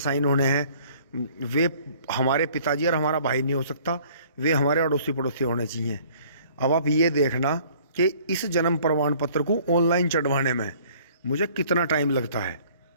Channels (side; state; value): both; inverted; correlation -0.55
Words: साइन होने हैं, वे हमारे पिताजी और हमारा भाई नहीं हो सकता, वे हमारे अड़ोसी पड़ोसी होने चाहिए। अब आप ये देखना कि इस जन्म प्रमाण पत्र को ऑनलाइन चढ़वाने में मुझे कितना टाइम लगता है।